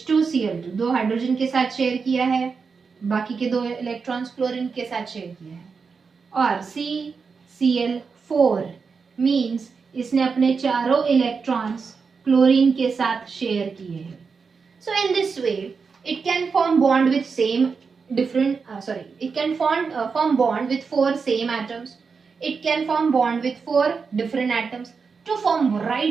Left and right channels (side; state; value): left; quieter; 5.2 dB